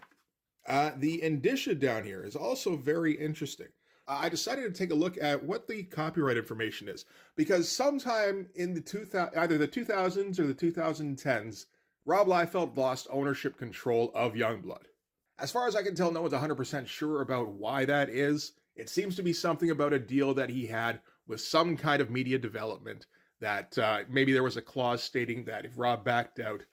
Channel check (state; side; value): identical; both; correlation 1.00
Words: The indicia down here is also very interesting. I decided to take a look at what the copyright information is, because sometime in the either the 2000s or the 2010s, Rob Liefeld lost ownership control of Youngblood. As far as I can tell, no one's 100% sure about why that is. It seems to be something about a deal that he had with some kind of media development that maybe there was a clause stating that if Rob backed out,